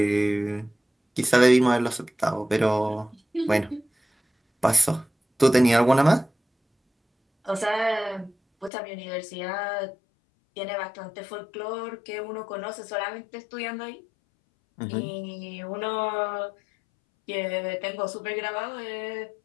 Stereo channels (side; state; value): right; drops out; at 8.7 s